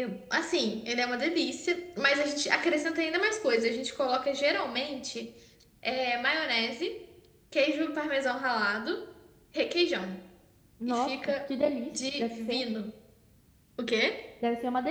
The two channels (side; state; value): both; identical; correlation 1.00